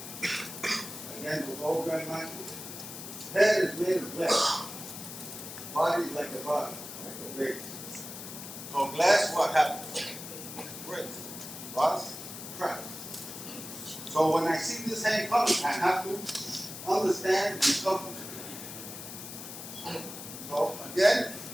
Again, with all Grão-mestre, head is made of glass. Body is like a body, like a vase. So glass, what happens? Breaks. Bust, cracks. So when I see this hand coming, I have to understand the something. So again,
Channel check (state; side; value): noise; left; hiss, 10 dB below the sound